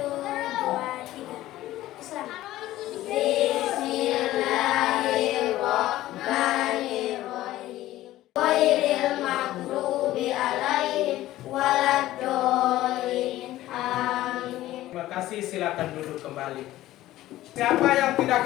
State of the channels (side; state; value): right; quieter; 15.2 dB